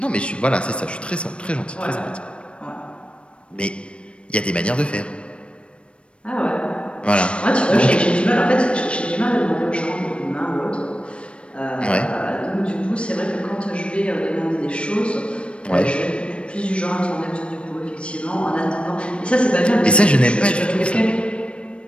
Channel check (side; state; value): right; late; 0.059 ms